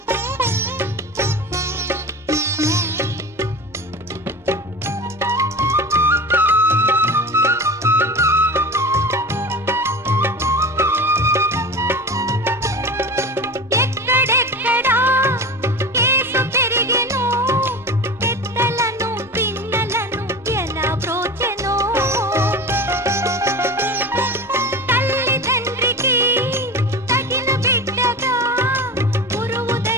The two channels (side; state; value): both; normal; correlation 0.31